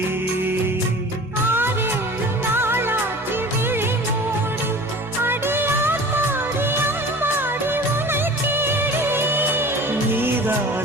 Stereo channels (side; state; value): both; normal; correlation 0.40